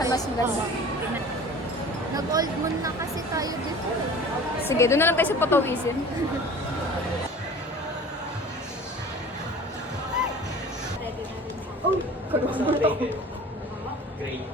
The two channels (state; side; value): normal; both; correlation 0.42